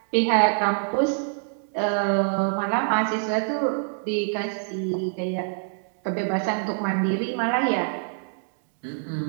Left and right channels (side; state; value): left; silent; digital silence